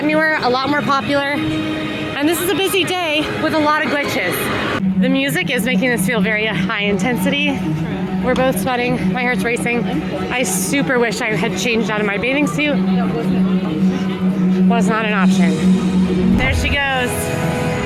newer, a lot more popular, and this is a busy day with a lot of glitches. The music is making this feel very high intensity. We're both sweating, my heart's racing. I super wish I had changed out of my bathing suit. Was not an option. There she goes.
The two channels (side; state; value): both; identical; correlation 1.00